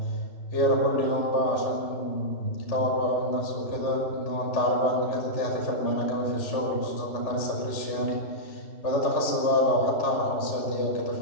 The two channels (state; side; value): late; right; 3.3 ms